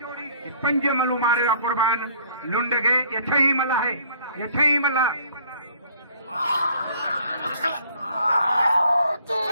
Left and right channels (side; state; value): both; inverted; correlation -0.58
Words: पंज मलू मारे कुर्बान लुंड के ये छही मला है। ये छही मला